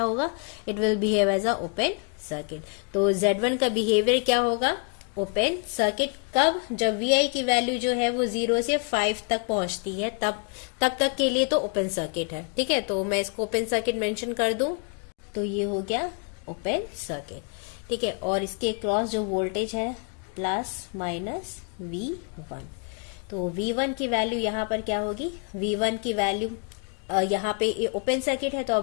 it will behave as a open circuit. तो Z1 का बिहेवियर क्या होगा, ओपन सर्किट। कब, जब VI की वैल्यू जो है वो 0 से 5 तक पहुंचती है, तब तक के लिए तो ओपन सर्किट है। ठीक है, तो मैं इसको ओपन सर्किट मेंशन कर दूं तो ये हो गया ओपन सर्किट। ठीक है, और इसके क्रॉस जो वोल्टेज है प्लस माइनस V1, तो V1 की वैल्यू यहाँ पर क्या होगी, V1 की वैल्यू यहाँ पे ये ओपन सर्किट है तो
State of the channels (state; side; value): quieter; right; 37.4 dB